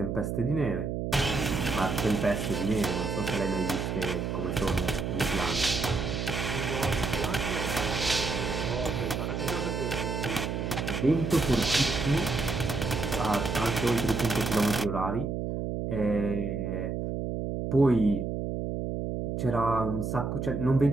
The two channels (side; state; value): right; noise; hum, 2 dB below the sound